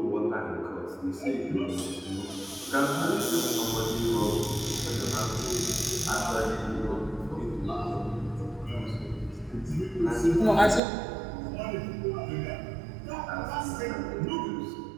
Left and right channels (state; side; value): drops out; left; at 10.8 s